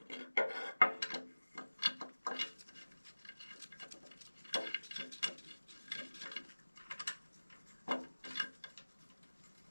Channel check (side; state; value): both; inverted; correlation -1.00